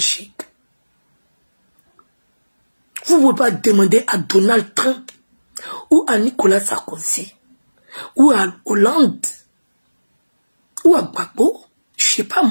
Vous ne pouvez pas demander à Donald Trump ou à Nicolas Sarkozy ou à Hollande ou à Gbagbo, je ne sais pas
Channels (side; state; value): both; inverted; correlation -1.00